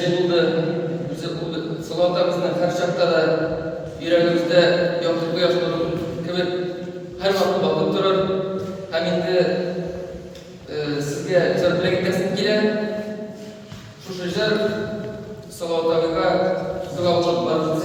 buldu. Salavat'ta bizden her şartta da yüreğimizde yaptık bu yaşları gibi her vakit bakıp durur. Hem indi sizge çarpıya gitmesin gile şu şecer Salavat'ta Salavat'ta var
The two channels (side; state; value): both; identical; correlation 1.00